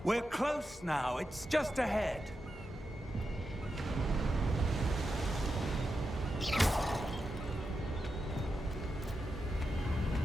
We're close now. It's just ahead.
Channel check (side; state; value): both; normal; correlation 0.88